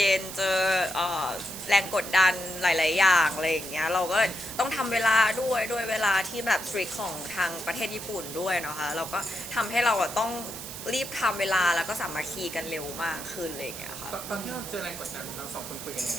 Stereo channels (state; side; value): noise; right; hiss, 10 dB below the sound